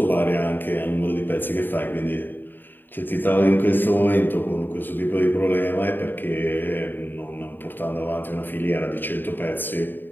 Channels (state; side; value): late; right; 0.093 ms